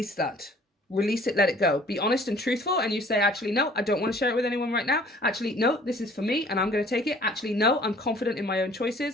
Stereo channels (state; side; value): normal; both; correlation 0.54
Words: that. Release it, let it go. Be honest and truthful, and you say, actually, no, I don't want to share it with anyone right now. Actually, no, this is for me, and I'm going to take it. Actually, no, I'm confident in my own